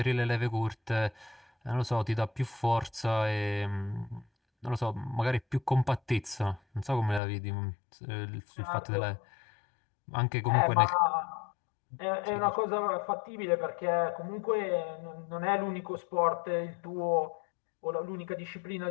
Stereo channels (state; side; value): drops out; right; at 7.2 s